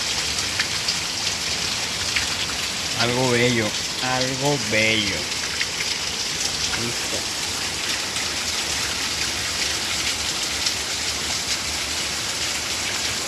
Algo bello, algo bello. Listo.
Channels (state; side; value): identical; both; correlation 1.00